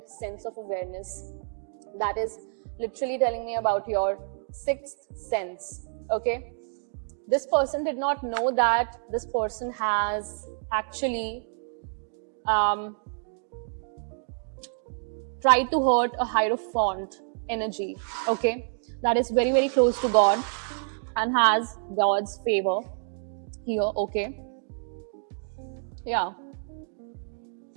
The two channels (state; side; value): silent; left; digital silence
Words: sense of awareness. That is literally telling me about your sixth sense, okay? This person did not know that this person has actually tried to hurt a Hierophant energy, okay? That is very, very close to God and has God's favor here, okay? Yeah.